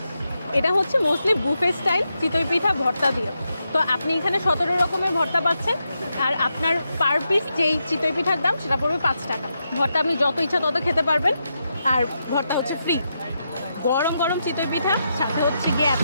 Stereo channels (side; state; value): both; inverted; correlation -0.84